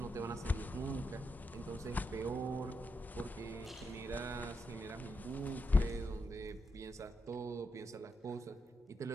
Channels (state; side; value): normal; both; correlation 0.83